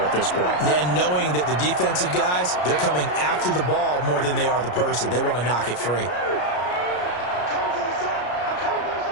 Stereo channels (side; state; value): right; late; 33 ms